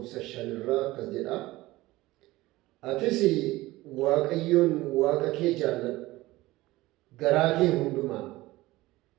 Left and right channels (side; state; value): left; quieter; 18.5 dB